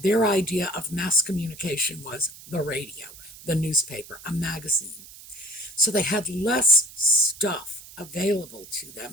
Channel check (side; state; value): right; noise; hiss, 18 dB below the sound